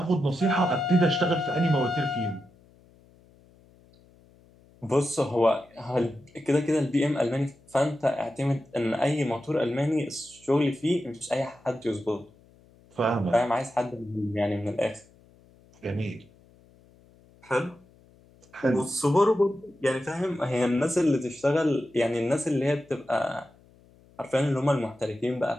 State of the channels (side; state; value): left; noise; hum, 28 dB below the sound